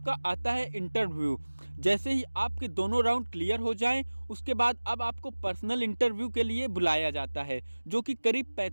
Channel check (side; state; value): both; inverted; correlation -1.00